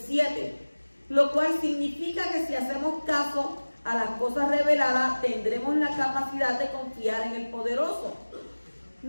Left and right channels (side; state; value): both; inverted; correlation -1.00